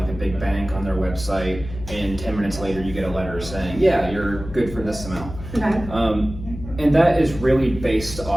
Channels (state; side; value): noise; left; hum, 12 dB below the sound